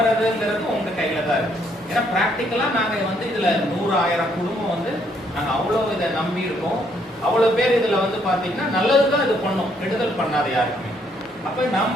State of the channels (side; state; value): both; normal; correlation 0.70